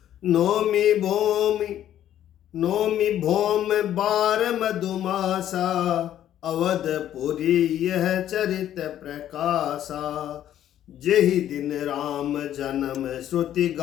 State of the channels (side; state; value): right; quieter; 11.4 dB